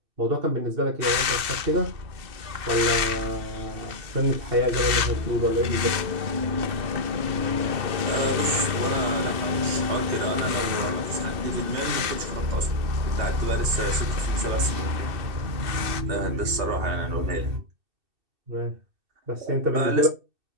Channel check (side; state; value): left; late; 2.6 ms